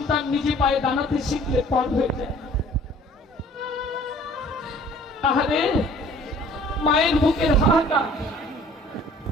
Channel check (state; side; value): normal; both; correlation 0.52